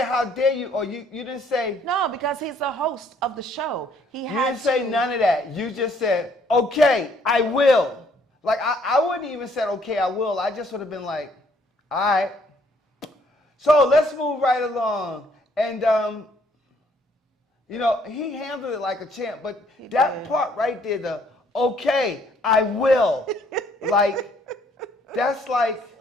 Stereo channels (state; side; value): normal; both; correlation 0.64